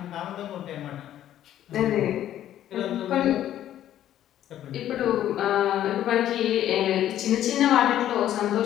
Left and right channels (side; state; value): right; quieter; 11.8 dB